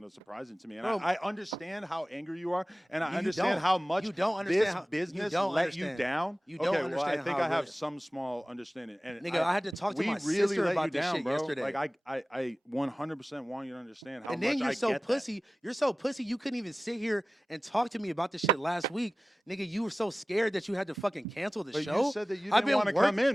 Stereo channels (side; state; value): both; normal; correlation 0.96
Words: of surprising to me, and Bro, I understand how angry you are, and I You understand don't. how much You don't understand this how- you business don't let understand. you down. You don't okay, well, I understand think how I have really- some small understanding. And Nigga, I had to talk to we my really sister let about you this down, shit bro. yesterday. Like I 100% want you to understand how And much then you're I so get that. pussy. You're so pussy. You couldn't even sit here and talk to me about this shit last week, nigga. You were so scared that you had to fucking cancel the But show. you said that you I've didn't been want to come